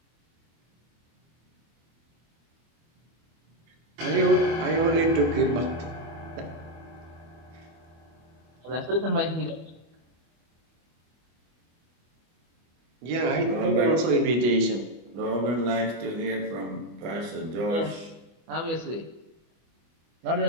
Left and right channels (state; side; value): late; left; 25 ms